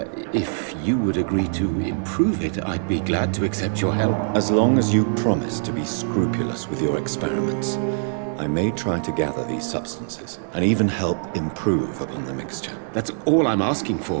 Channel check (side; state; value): left; silent; digital silence